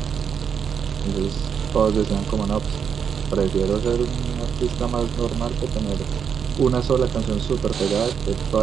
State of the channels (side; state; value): left; quieter; 7.2 dB